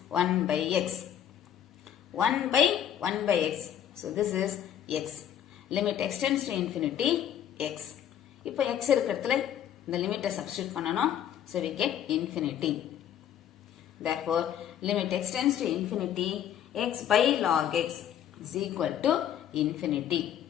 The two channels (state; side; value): quieter; right; 10.1 dB